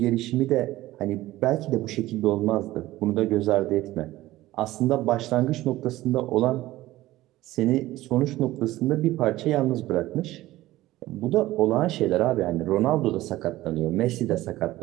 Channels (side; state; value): left; quieter; 16.6 dB